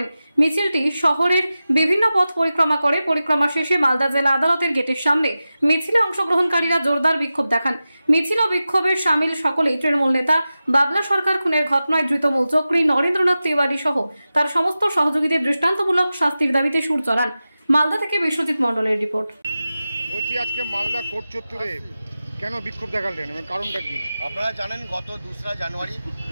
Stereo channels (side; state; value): both; inverted; correlation -0.94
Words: মিছিলটি শহরের বিভিন্ন পথ পরিক্রমা করে পরিক্রমা শেষে মালদা জেলা আদালতের গেটের সামনে মিছিলে অংশগ্রহণকারীরা জোরদার বিক্ষোভ দেখান। মিছিল ও বিক্ষোভের সামিল সকলেই তৃণমূল নেতা বাবলা সরকার খুনের ঘটনায় ধৃত মূল চক্রী নরেন্দ্রনাথ তিওয়ারি সহ তার সমস্ত সহযোগীদের দৃষ্টান্তমূলক শাস্তির দাবিতে সুর চড়ান। মালদা থেকে বিশ্বজিৎ মণ্ডলের রিপোর্ট। বলছি, আজকে মালদা কোর্ট চত্বরে কেন বিক্ষোভ দেখালেন এবং কারণটা কি? আপনারা জানেন, গত 2রা জানুয়ারি